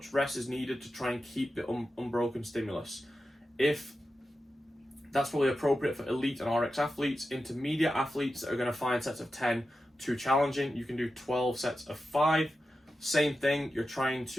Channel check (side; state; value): both; normal; correlation 0.91